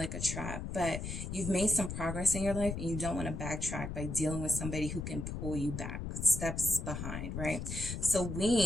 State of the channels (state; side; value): noise; left; rumble, 5 dB below the sound